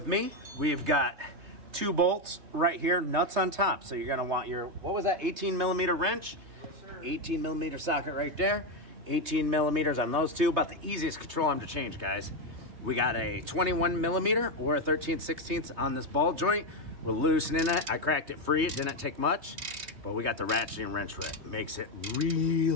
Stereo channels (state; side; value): late; left; 3.3 ms